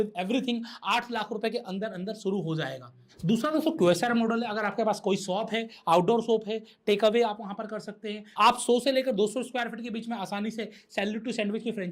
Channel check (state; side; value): identical; both; correlation 1.00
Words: everything 8 lakh रुपए के अंदर अंदर शुरू हो जाएगा। दूसरा दोस्तों, QSR मॉडल है। अगर आपके पास कोई शॉप है, आउटडोर शॉप है, टेक अवे आप वहां पर कर सकते हैं। आप 100 से लेकर 200 स्क्वायर फीट के बीच में आसानी से सैल्यूट टू सैंडविच की